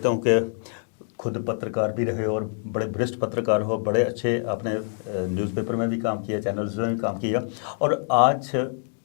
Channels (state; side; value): silent; right; 61 dB below the other